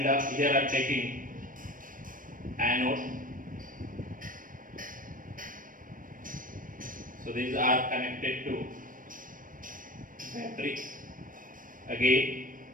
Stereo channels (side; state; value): left; late; 0.40 ms